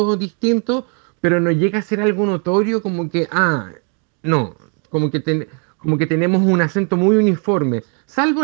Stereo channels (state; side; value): quieter; left; 39.6 dB